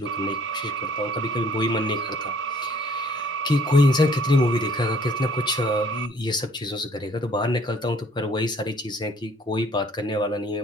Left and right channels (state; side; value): normal; both; correlation 0.59